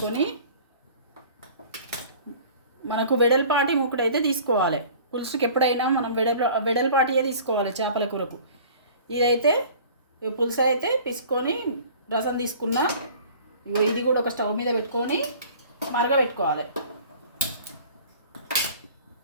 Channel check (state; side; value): inverted; both; correlation -0.46